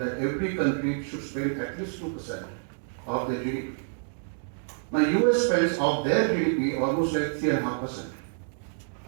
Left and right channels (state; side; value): silent; left; digital silence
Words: every country should spend at least 2% of their GDP. Now US spends of their GDP almost like 3.5%,